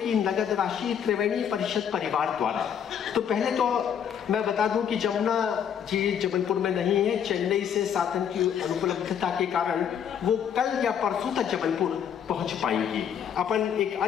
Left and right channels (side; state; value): right; quieter; 8.4 dB